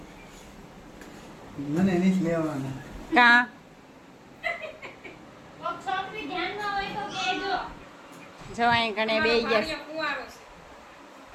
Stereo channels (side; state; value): both; identical; correlation 1.00